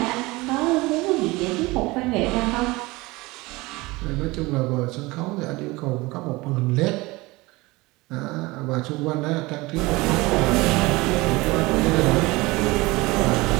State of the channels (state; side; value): quieter; left; 22.1 dB